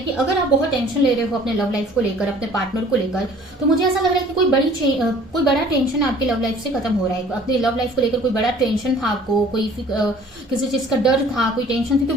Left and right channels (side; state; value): both; normal; correlation 0.52